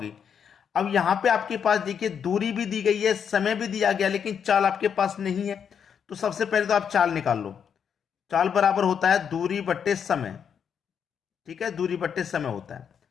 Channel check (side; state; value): right; quieter; 7.6 dB